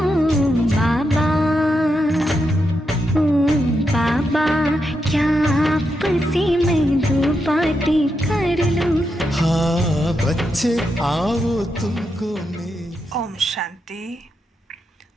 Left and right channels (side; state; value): both; normal; correlation 0.84